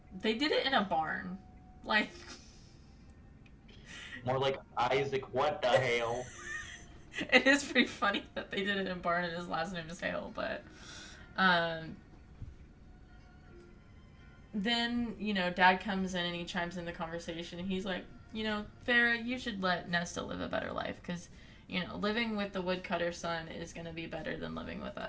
they did it in a barn. Like, more like Isaac, what the hell? It is pretty funny that they did it in a barn and his last name is Hale, but, then, you know, Dad comes in and he chimes in the conversation and he's like, you know, Feyre, you should let Nesta live a better life because, you know, living with the woodcutter's son is going to be better than living with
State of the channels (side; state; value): both; identical; correlation 1.00